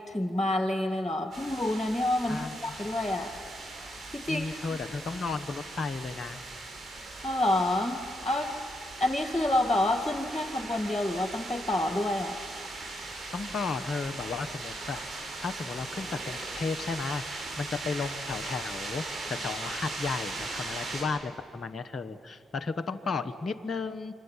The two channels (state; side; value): normal; both; correlation 0.80